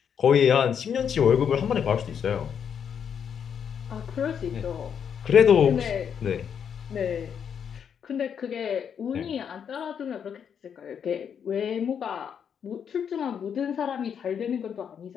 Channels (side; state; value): right; quieter; 7.7 dB